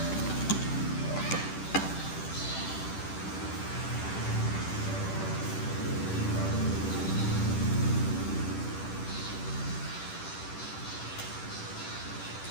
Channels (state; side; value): late; right; 10 ms